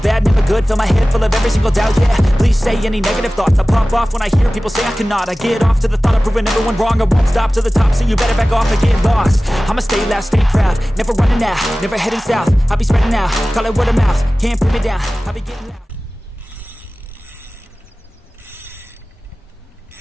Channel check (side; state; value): both; normal; correlation 0.97